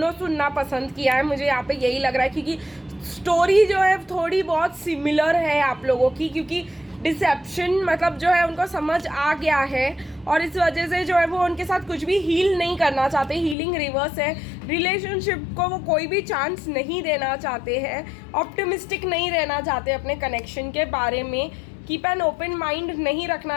सुनना पसंद किया है, मुझे यहाँ पे यही लग रहा है, क्योंकि स्टोरी जो है थोड़ी बहुत सिमिलर है आप लोगों की, क्योंकि डिसेप्शन मतलब जो है उनको समझ आ गया है, और इस वजह से जो है वो उनके साथ कुछ भी हील नहीं करना चाहते, हीलिंग रिवर्स है। रिलेशनशिप को वो कोई भी चांस नहीं देना चाहते हैं, ऑप्टिमिस्टिक नहीं रहना चाहते अपने कनेक्शन के बारे में, कीप एन ओपन माइंड नहीं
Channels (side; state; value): right; drops out; at 13.6 s